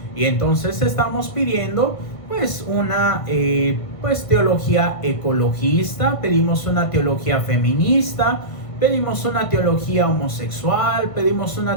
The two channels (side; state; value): right; late; 1.5 ms